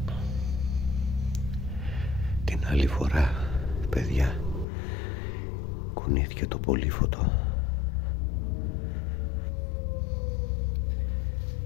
Την άλλη φορά, παιδιά, κουνήθηκε το πολύφωτο.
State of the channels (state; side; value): drops out; right; at 4.7 s